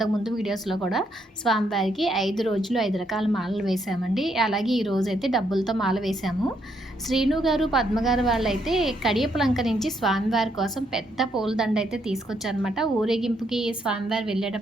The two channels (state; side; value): normal; both; correlation 0.74